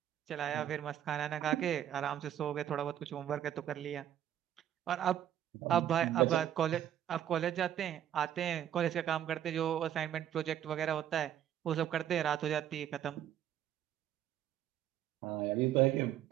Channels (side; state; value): left; quieter; 10.9 dB